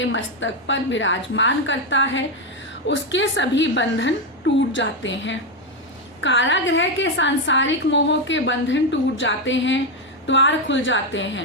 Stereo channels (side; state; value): both; normal; correlation 0.07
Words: मस्तक पर विराजमान करता है, उसके सभी बंधन टूट जाते हैं। कारागृह के सांसारिक मोह के बंधन टूट जाते हैं, द्वार खुल जाते